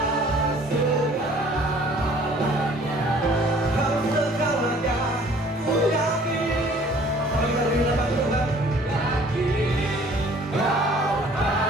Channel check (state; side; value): normal; both; correlation 0.54